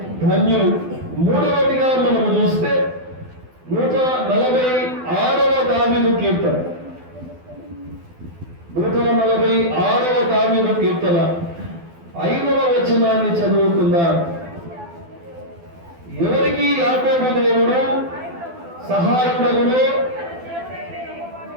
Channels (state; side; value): late; left; 12 ms